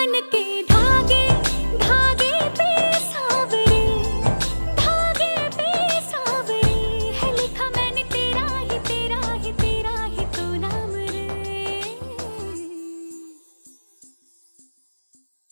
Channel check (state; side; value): inverted; both; correlation -1.00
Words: के धागे धागे पे सावरे धागे पे सावरे है लिखा मैंने तेरा ही तेरा ही तेरा ही तो नाम रे।